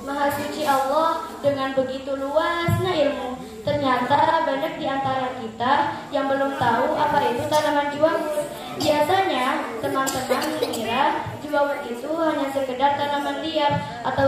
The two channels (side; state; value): both; identical; correlation 1.00